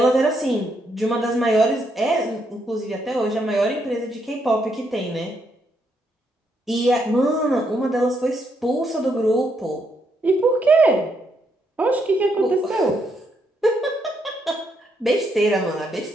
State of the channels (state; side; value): normal; both; correlation 0.77